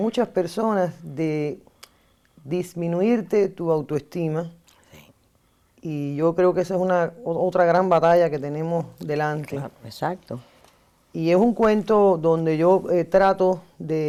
personas de disminuirte tu autoestima. Y yo creo que esa es otra gran batalla que tenemos delante. Claro, exacto. Y es un cuento donde yo trato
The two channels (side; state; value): both; identical; correlation 1.00